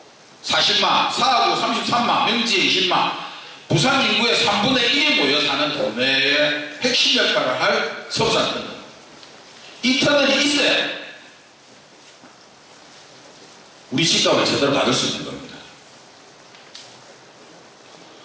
40만, 사하구 33만, 명지에 20만, 부산 인구의 3분의 1이 모여 사는 동네의 핵심 역할을 할 서부산 터널. 이 터널이 있어야 우리 집값을 제대로 받을 수 있는 겁니다.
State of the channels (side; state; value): both; identical; correlation 1.00